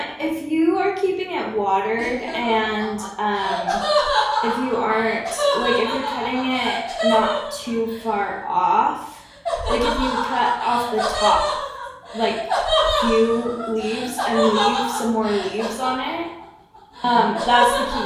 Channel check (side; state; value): both; identical; correlation 1.00